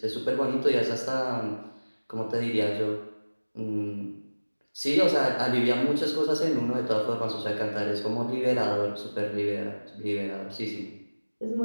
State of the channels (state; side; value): inverted; both; correlation -1.00